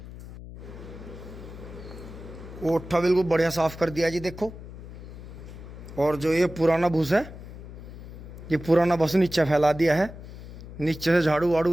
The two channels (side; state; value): left; noise; hum, 13 dB below the sound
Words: ओठा बिल्कुल बढ़िया साफ कर दिया जी देखो। और जो ये पुराना भूस है, ये पुराना बस नीचे फैला दिया है। नीचे से झाड़ू वाड़ू